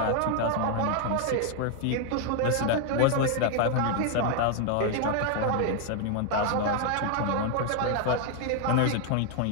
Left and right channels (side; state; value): both; different; correlation 0.00